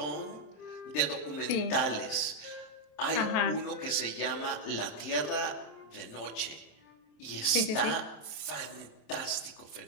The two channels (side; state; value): right; late; 27 ms